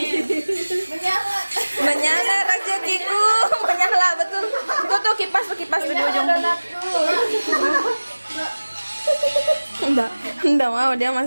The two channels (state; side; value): inverted; both; correlation -1.00